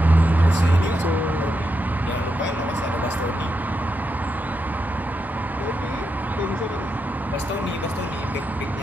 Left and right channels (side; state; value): both; normal; correlation 0.84